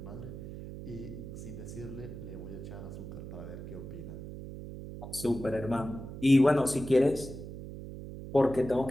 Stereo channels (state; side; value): noise; right; hum, 10 dB below the sound